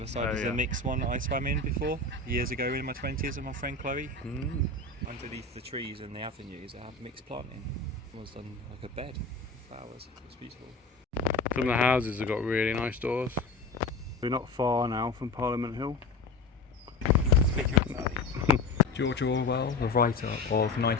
side is yeah. a mixed one that I swam in before, years ago in my 20s with my friend Chloe. Underneath the trees and the avenues I have mixed planting. It was done like a bed of flowers. It was beautiful. Some of the houses have got really nice doors. We're not far now from Parliament Hill. Speaking of that, George Orwell, the writer of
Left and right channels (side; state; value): right; quieter; 3.6 dB